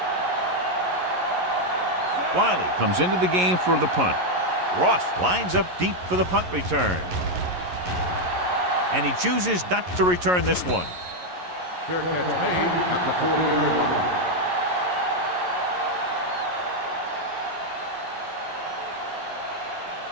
Wiley comes into the game for the punt. Ross lines up deep for the punt return. And he chooses not to return this one. Fair catch made at the 40-yard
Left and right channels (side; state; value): left; late; 11 ms